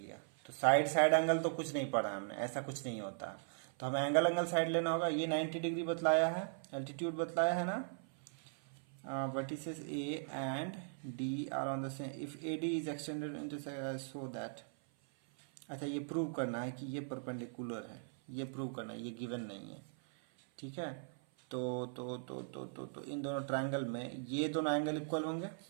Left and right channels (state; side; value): silent; left; 52 dB below the other